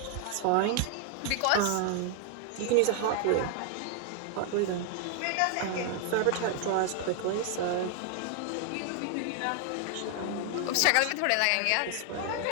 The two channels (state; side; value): different; both; correlation 0.00